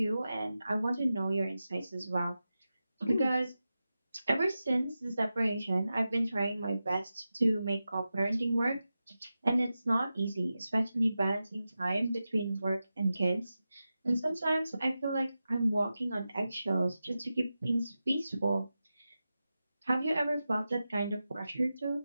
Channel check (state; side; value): inverted; both; correlation -0.93